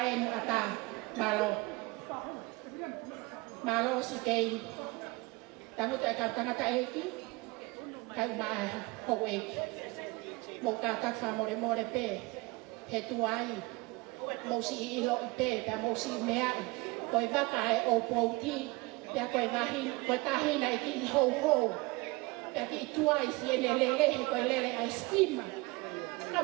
e nu ata, malo. Malo si kei, tangu te ka tangata eki, kai uma e hou eki. Mo ka tak wha more more pe, he tuai, mo si i ilo i pe, pea mo si mea i, koe waka e o pouti, pea koe wahin, koe tahina e ki i hou hou, pea ki i tuai si ene lele, he koe lele a estima. Ka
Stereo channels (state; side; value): quieter; left; 24.6 dB